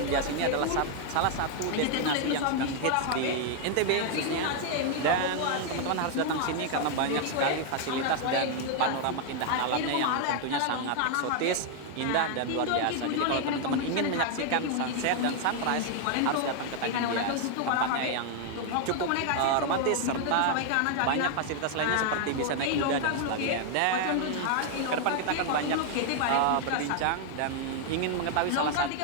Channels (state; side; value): different; both; correlation 0.00